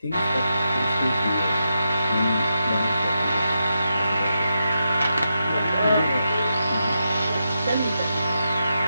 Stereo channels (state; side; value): inverted; both; correlation -0.85